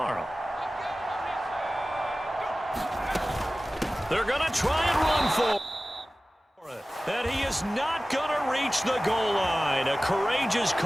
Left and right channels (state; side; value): normal; both; correlation 0.97